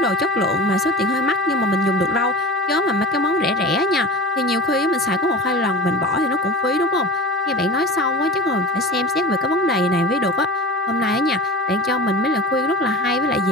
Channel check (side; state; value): both; normal; correlation 0.32